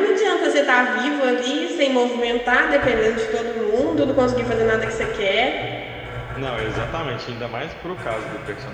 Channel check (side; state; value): both; identical; correlation 1.00